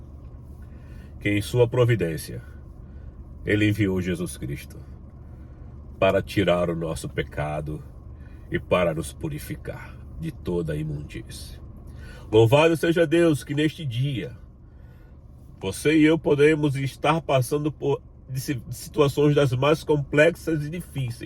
que em sua providência, ele enviou Jesus Cristo para tirar o nosso pecado e para nos purificar de toda a imundície. Louvado seja Deus que neste dia, você e eu podemos estar passando por situações das mais complexas e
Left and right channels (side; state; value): both; identical; correlation 1.00